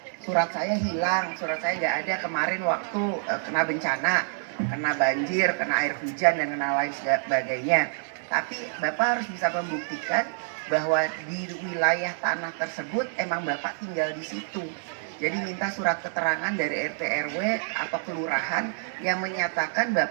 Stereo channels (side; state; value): left; silent; digital silence